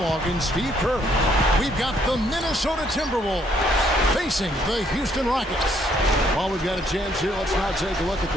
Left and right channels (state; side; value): normal; both; correlation 0.68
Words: and Steve Kerr. We've got the Minnesota Timberwolves facing the Houston Rockets. While we've got a chance here, let's now take a look at